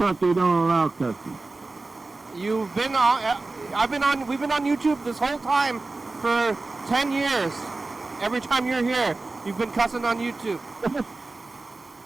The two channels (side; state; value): left; quieter; 3.4 dB